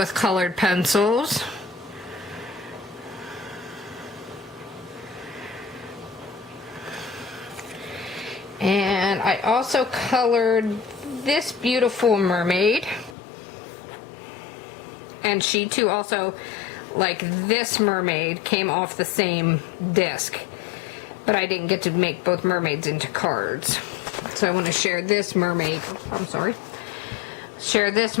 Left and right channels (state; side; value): drops out; right; at 13.2 s